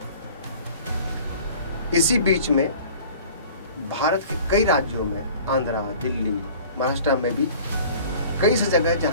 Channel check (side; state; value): both; inverted; correlation -0.46